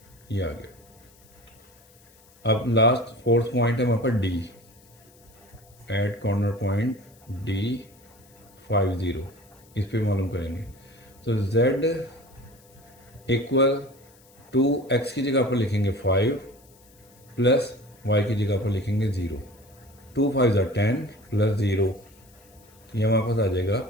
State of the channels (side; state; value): left; noise; hiss, 28 dB below the sound